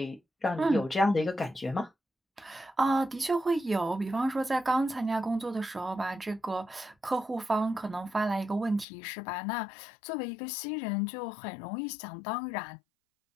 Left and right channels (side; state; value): right; drops out; at 8.8 s